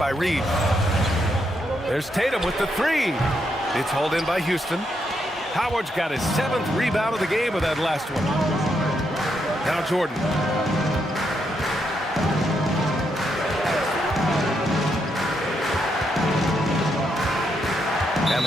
Reed. There's Tatum with the 3. It's hauled in by Houston. Howard's got his 7th rebound of the game with that last one. Now Jordan. And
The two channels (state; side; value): normal; both; correlation 0.79